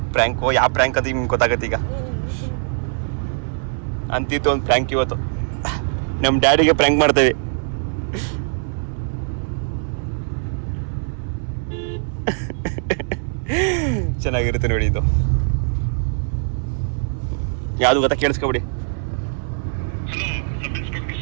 ಪ್ರ್ಯಾಂಕು. ಯಾವ ಪ್ರ್ಯಾಂಕ್ ಅಂತ ನಿಮ್ಗೆ ಗೊತ್ತಾಗತ್ತೆ ಈಗ. ಅಂತಿತ್ತು ಒಂದು ಪ್ರ್ಯಾಂಕ್ ಇವತ್ತು, ನಮ್ಮ ಡ್ಯಾಡಿಗೆ ಪ್ರ್ಯಾಂಕ್ ಮಾಡ್ತೇವೆ. ಚೆನ್ನಾಗಿರುತ್ತೆ ನೋಡಿ ಇದು. ಯಾವ್ದು ಗೊತ್ತಾ? ಕೇಳಿಸ್ಕೊಬಿಡಿ.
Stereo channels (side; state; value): left; silent; 64 dB below the other